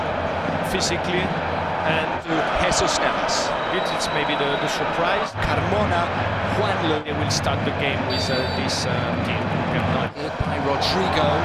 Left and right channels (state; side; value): identical; both; correlation 1.00